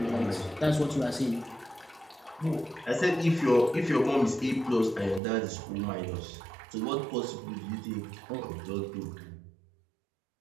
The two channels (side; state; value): left; drops out; at 5.2 s